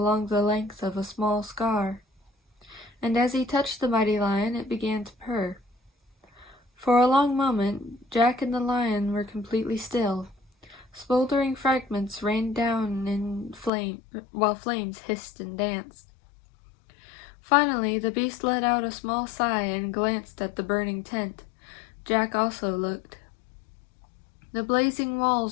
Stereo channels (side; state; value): right; drops out; at 13.7 s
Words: the length of a small scar. And as he touched the mighty lion, it began to purr. For a long moment, Jack and the lion were completely still. Smoldering fragments rained down while flames hissed and danced. Finally, the beast let out a small sigh and glanced at the burning tent. Jack also looked. The blazing